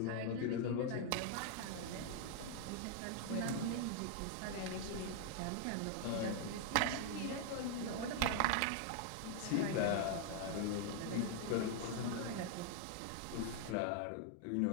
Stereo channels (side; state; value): both; different; correlation 0.00